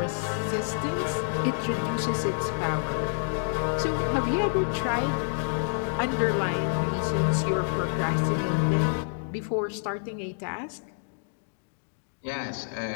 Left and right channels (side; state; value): right; silent; digital silence